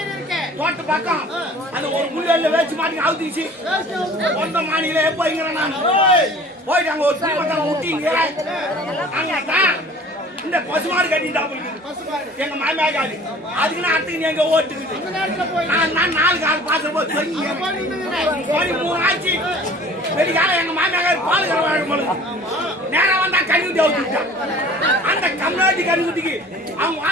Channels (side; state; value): both; normal; correlation 0.47